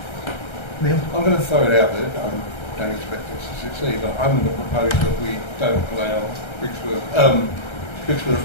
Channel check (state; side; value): late; right; 1.3 ms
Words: Neil? I'm going to throw it out there. I don't expect this to succeed, but I'm going to propose that we don't allow